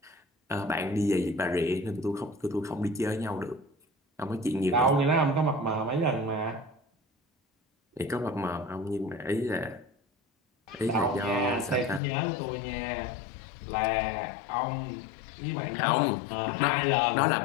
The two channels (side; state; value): right; drops out; at 12.0 s